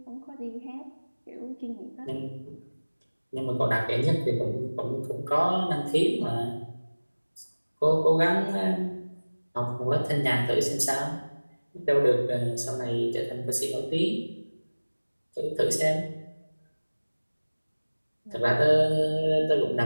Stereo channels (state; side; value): inverted; both; correlation -1.00